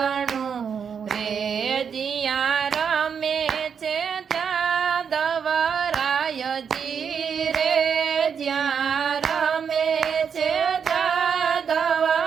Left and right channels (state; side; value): quieter; left; 6.9 dB